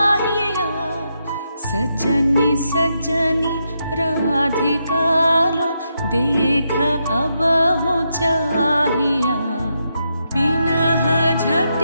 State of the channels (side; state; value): both; inverted; correlation -0.82